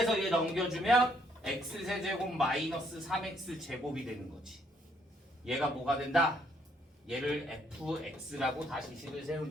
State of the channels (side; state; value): both; normal; correlation 0.69